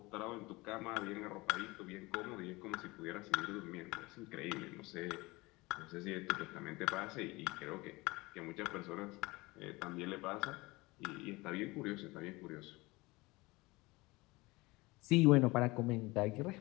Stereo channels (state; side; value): quieter; right; 22.6 dB